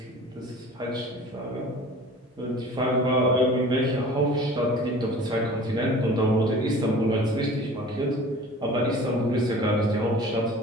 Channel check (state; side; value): normal; both; correlation 0.43